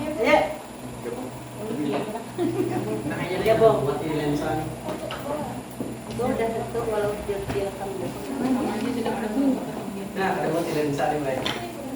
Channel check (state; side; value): identical; both; correlation 1.00